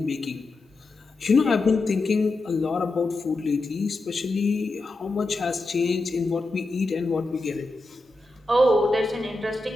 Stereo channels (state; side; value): quieter; right; 3.0 dB